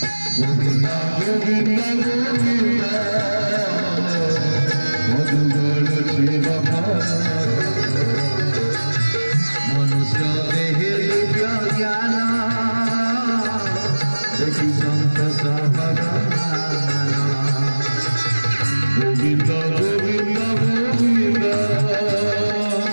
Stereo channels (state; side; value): inverted; both; correlation -1.00